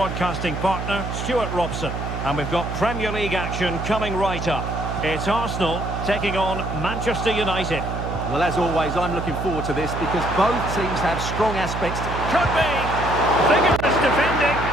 partner, Stuart Robson. And we've got Premier League action coming right up. It's Arsenal taking on Manchester United. Well, as always, I'm looking forward to this because both teams have strong aspects. Could be. Vigorous defending.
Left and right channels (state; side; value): noise; right; hum, 5 dB below the sound